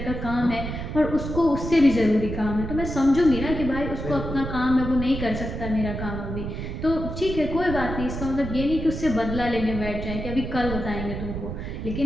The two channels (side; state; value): right; noise; rumble, 6 dB below the sound